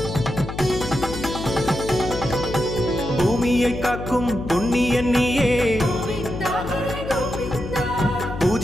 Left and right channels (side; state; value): left; noise; hum, 8 dB below the sound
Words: பூமியை காக்கும் புண்ணியன் நீயே